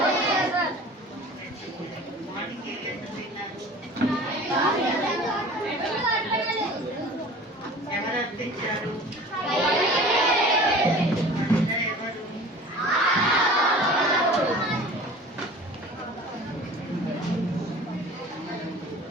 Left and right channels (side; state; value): both; normal; correlation 0.42